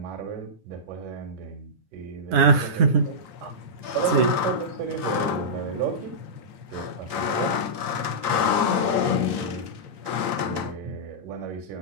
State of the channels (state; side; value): late; left; 9.8 ms